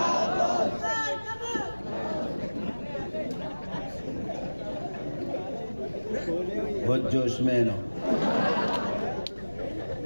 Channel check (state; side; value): inverted; both; correlation -1.00